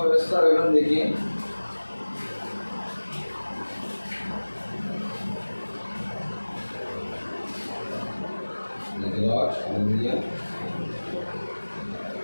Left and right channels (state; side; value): inverted; both; correlation -1.00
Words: व्यवस्था विवरण देखिए।